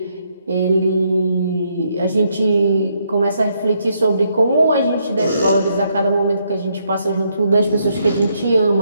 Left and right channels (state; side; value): inverted; both; correlation -0.75